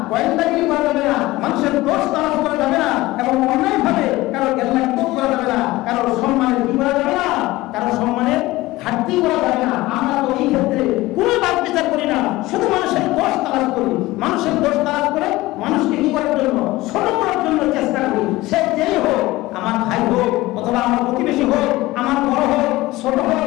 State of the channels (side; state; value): right; quieter; 18.8 dB